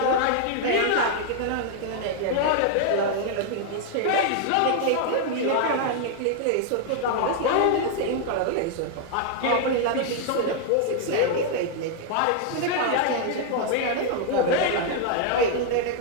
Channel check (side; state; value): both; different; correlation 0.00